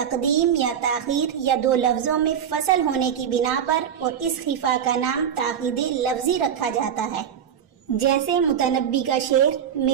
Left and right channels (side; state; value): left; quieter; 8.6 dB